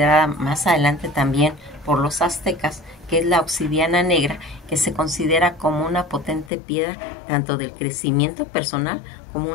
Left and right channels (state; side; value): drops out; right; at 6.5 s